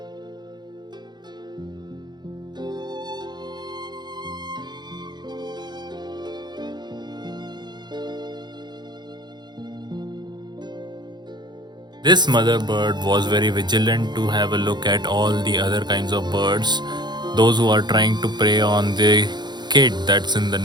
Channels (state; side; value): late; left; 0.21 ms